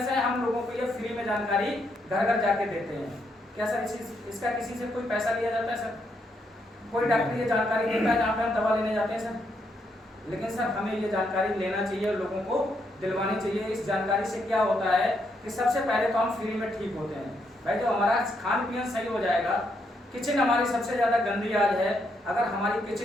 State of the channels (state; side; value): normal; both; correlation 0.77